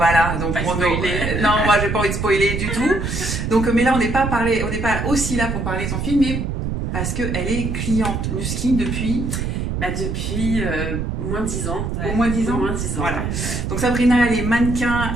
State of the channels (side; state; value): right; noise; rumble, 2 dB below the sound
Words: donc non, moi j'ai pas envie de spoiler du tout. Donc, mais là, on n'est pas aussi là pour parler de son film, mais parce qu'elle est cliente Nuskin depuis. Depuis moins de 10 ans. Ouais. Au moins 10 ans. Au moins 10 ans. Voilà. Ouais. Donc Sabrina, elle est